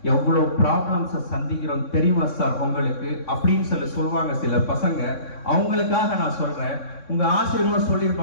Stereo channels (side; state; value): right; late; 3.6 ms